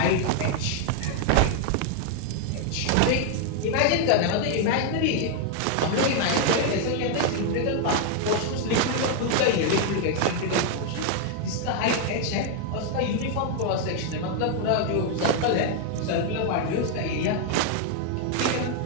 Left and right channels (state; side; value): different; both; correlation 0.00